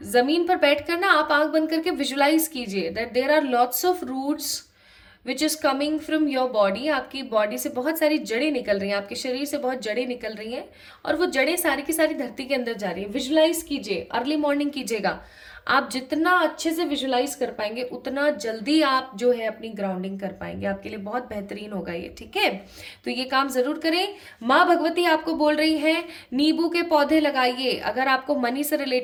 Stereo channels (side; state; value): both; identical; correlation 1.00